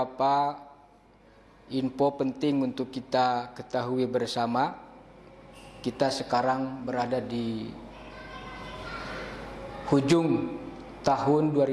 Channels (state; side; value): identical; both; correlation 1.00